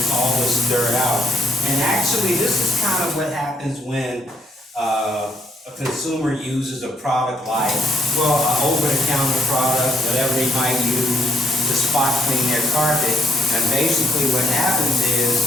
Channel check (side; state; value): both; normal; correlation 0.71